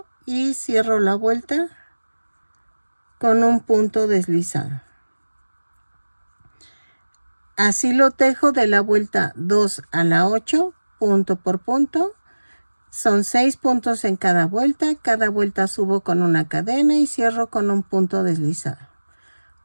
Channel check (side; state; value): both; inverted; correlation -1.00